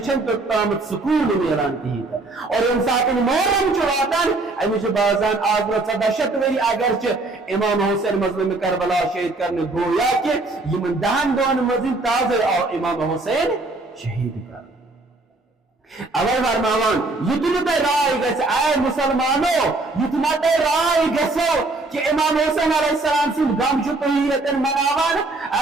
چھن تو طاقت سکون میلان کی اور انسان محرم چواتان امی چھ بازان آزر 14 وری اگرچہ امام حسین مظلوم کربلا شہید کرنے گویا کہ یہ من دہن دون مزید تازر اور امام حسین شہید کر اول فرماوان یتنا تے رائے گس اے مسلمانو یتنا تے رائے گسو کہ امام حسین علیہ السلام سے غم جو طہیرتن مناوان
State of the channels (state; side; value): quieter; left; 3.2 dB